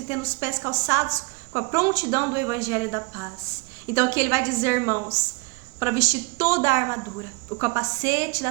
e tendo os pés calçados com a prontidão do evangelho da paz. Então aqui ele vai dizer, irmãos, para vestir toda a armadura, o capacete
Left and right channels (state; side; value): quieter; left; 28.2 dB